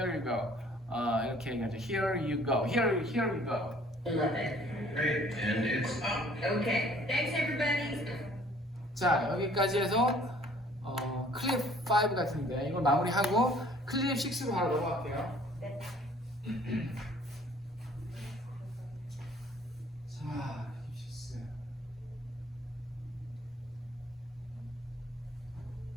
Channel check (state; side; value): normal; both; correlation 0.56